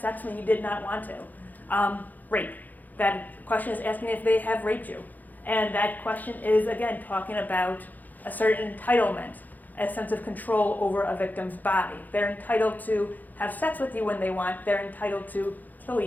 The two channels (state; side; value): late; right; 0.083 ms